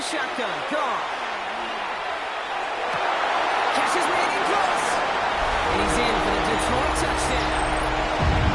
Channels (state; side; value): identical; both; correlation 1.00